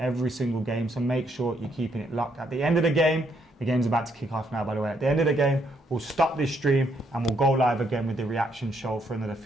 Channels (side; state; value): both; normal; correlation 0.73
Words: single game. So make sure you're keeping it locked. At the end of the game's about to kick off now, by the way. At the end of the game, we'll stop this stream and we'll go live again with the reaction show for another